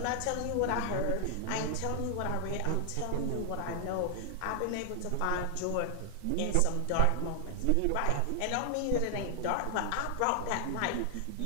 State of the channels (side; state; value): both; different; correlation 0.00